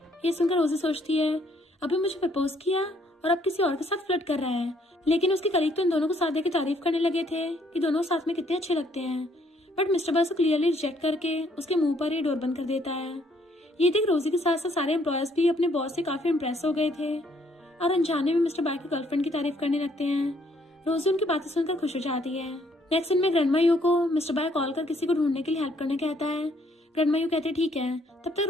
ये सुनकर रोजी सोचती है अभी मुझे प्रपोज किया और अब किसी और के साथ फ्लर्ट कर रहा है, लेकिन उसके कलीग तो इन दोनों को साथ देकर तारीफ करने लगे थे कि दोनों साथ में कितने अच्छे लगते हैं। बट मिस्टर बाय को क्लियरली रिजेक्ट करके उसके मुंह पर ही डोर बंद कर देता है। ये देख रोजी के साथ साथ सारे एम्प्लॉयज भी अपने बॉस से काफी इम्प्रेस हो गए थे और अनजाने में मिस्टर बाय की गर्लफ्रेंड की तारीफ करने लगते हैं। रोजी उनकी बातें सुनकर खुश हो जाती है। नेक्स्ट दिन में ग्रैंडमा यू को मिस्टर बाय कॉल कर किसी को ढूंढने के लिए हेल्प करने कहता है। ग्रैंडमा यू कहते ठीक है। तब तक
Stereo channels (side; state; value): both; normal; correlation 0.67